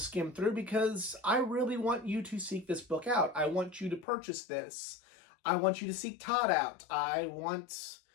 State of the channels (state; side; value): drops out; right; at 4.0 s